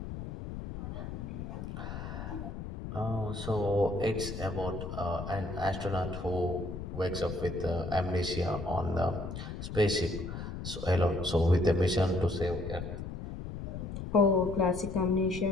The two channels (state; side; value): noise; left; rumble, 7 dB below the sound